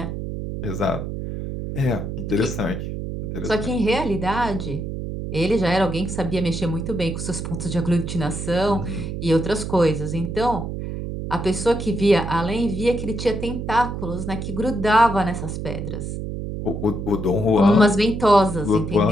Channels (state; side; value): noise; right; hum, 5 dB below the sound